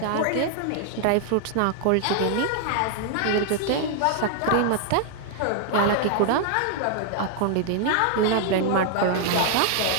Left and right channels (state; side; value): different; both; correlation 0.00